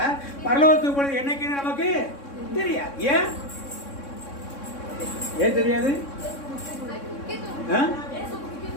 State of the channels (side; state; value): right; late; 3.6 ms